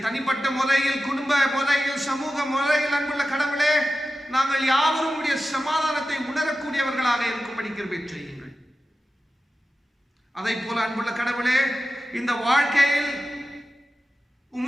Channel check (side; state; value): both; normal; correlation 0.93